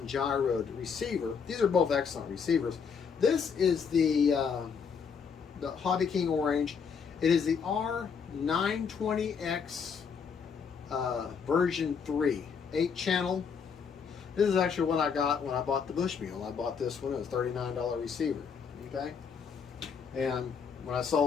receiver. These are both excellent receivers. This is the Hobby King Orange. It is the R920X version 3, 8-channel. This is actually what I got when I bought the Bushmule. I bought this one. It was a $39 receiver. Okay, and when I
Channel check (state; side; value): quieter; right; 6.3 dB